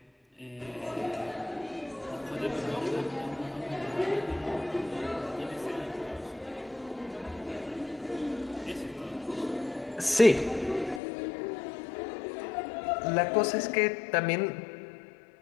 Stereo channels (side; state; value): right; drops out; at 11.0 s